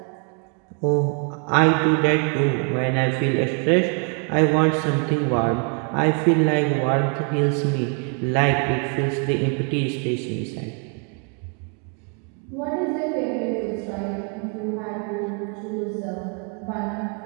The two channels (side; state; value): left; quieter; 39.6 dB